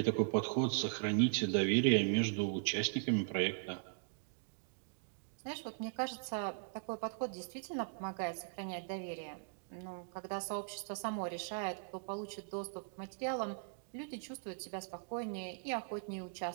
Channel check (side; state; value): left; silent; digital silence